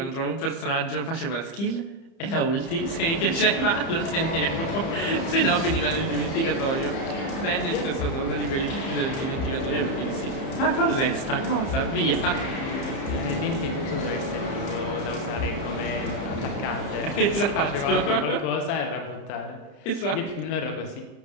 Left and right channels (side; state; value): right; late; 30 ms